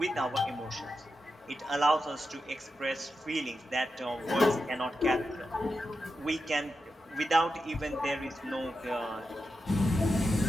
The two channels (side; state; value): both; normal; correlation 0.88